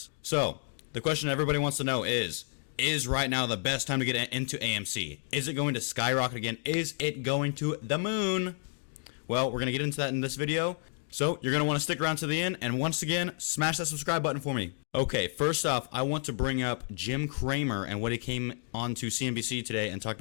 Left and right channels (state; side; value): silent; right; 57 dB below the other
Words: So, the question everybody wants to know is right now the best time to get into AMC? Is it going to skyrocket again? Is it going to the moon? Well, we're going to get into that in this video. So, you're going to want to stick around to the end, and once again, smash that subscribe button for me. Okay, first off, I want to bring up Jim Cramer and what he came on to CNBC today and talked